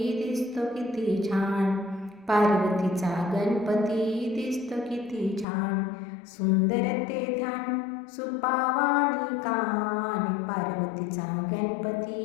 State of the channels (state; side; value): drops out; right; at 5.5 s